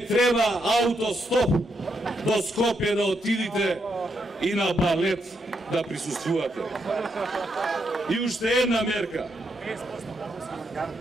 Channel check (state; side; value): normal; both; correlation 0.79